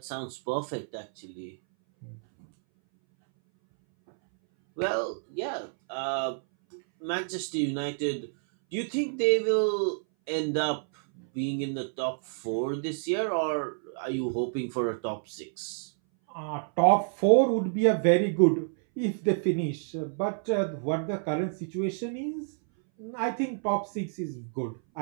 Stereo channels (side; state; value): left; silent; 59 dB below the other